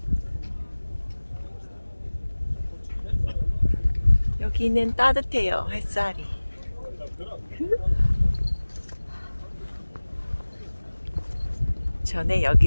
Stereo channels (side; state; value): both; inverted; correlation -1.00